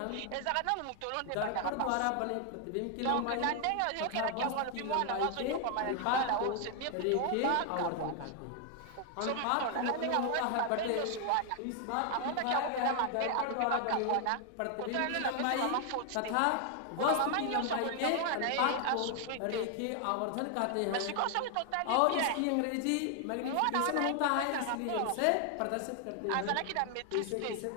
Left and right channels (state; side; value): different; both; correlation 0.00